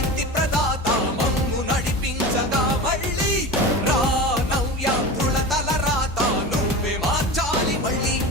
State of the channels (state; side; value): normal; both; correlation 0.29